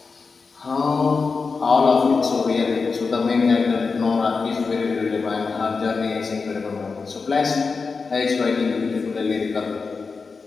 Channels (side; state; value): right; quieter; 4.6 dB